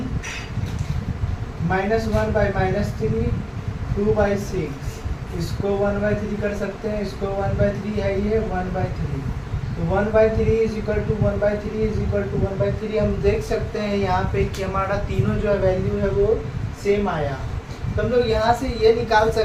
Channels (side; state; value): both; identical; correlation 1.00